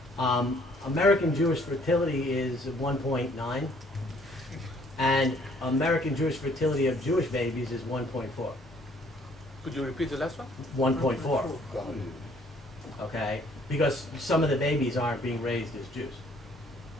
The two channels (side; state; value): both; normal; correlation 0.61